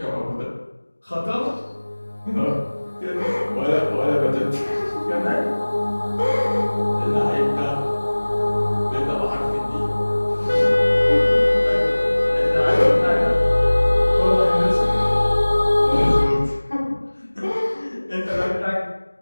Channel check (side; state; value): both; inverted; correlation -1.00